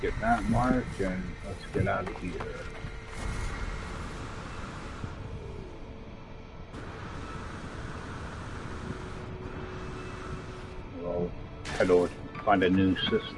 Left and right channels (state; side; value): identical; both; correlation 1.00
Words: that mark, and let's get out of here. We'll head over to find a new